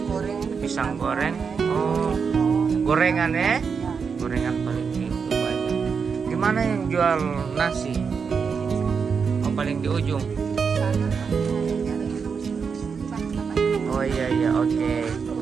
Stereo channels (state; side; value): quieter; left; 5.9 dB